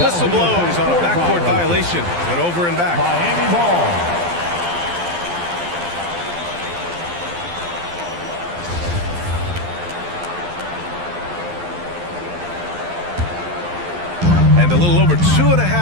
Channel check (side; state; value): left; late; 12 ms